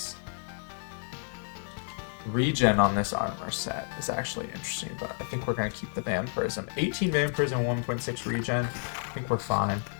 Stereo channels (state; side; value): silent; right; 58 dB below the other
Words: Regen on this armor set is actually interesting, but I think we're going to keep the vampirism. 18 vampirism, 1.6 regen. I think we're fine.